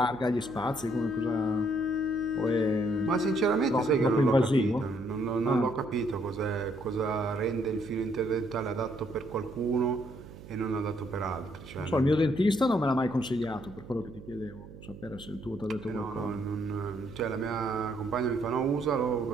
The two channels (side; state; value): right; noise; hum, 16 dB below the sound